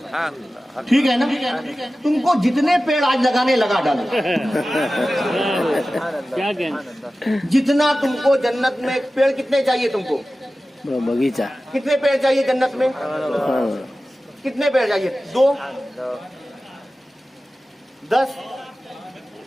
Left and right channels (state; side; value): normal; both; correlation 0.95